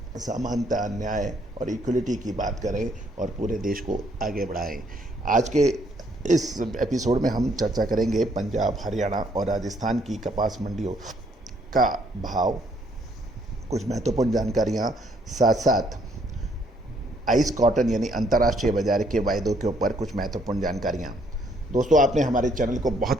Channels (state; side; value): normal; both; correlation 0.68